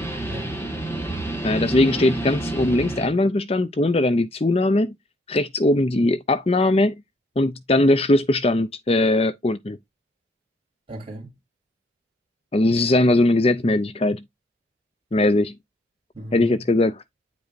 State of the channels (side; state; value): both; normal; correlation 0.67